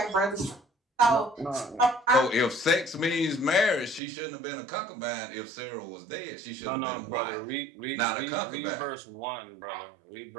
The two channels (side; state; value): left; drops out; at 4.0 s